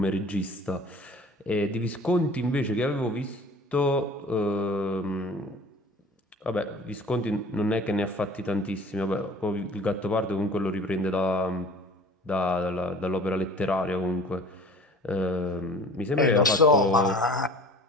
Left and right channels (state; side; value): normal; both; correlation 0.45